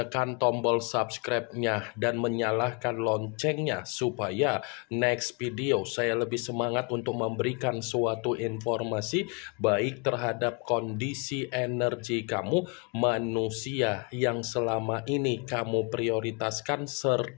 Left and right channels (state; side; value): quieter; right; 33.4 dB